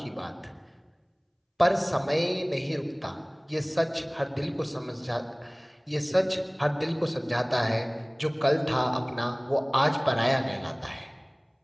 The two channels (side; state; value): both; identical; correlation 1.00